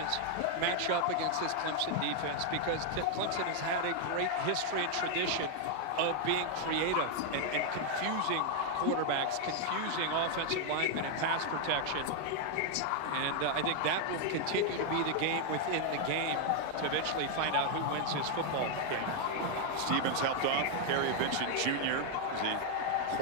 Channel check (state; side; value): different; both; correlation 0.00